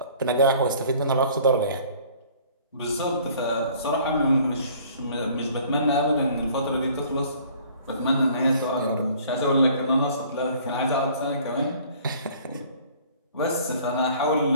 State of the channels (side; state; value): both; inverted; correlation -0.54